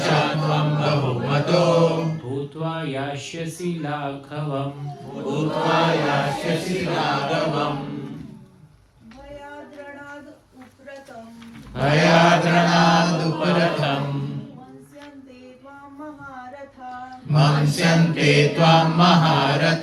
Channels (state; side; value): identical; both; correlation 1.00